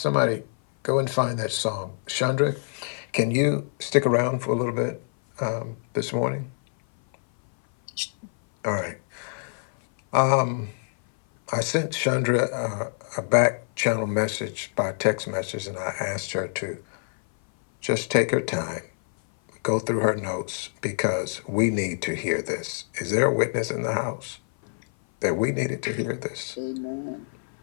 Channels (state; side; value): silent; right; 57 dB below the other